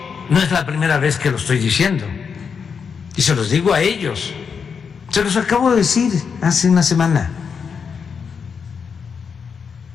no es la primera vez que lo estoy diciendo, y se los digo a ellos, se los acabo de decir hace una semana.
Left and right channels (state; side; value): quieter; right; 6.2 dB